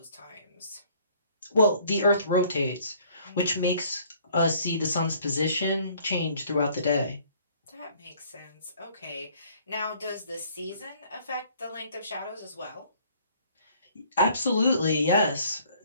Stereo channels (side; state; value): both; inverted; correlation -0.59